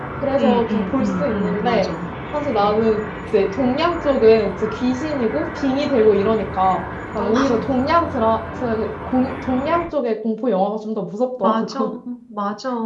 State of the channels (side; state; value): both; identical; correlation 1.00